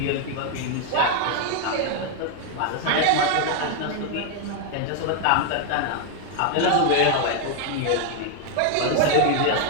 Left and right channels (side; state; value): both; different; correlation 0.00